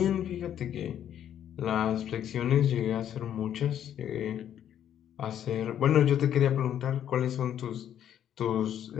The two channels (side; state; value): right; quieter; 10.1 dB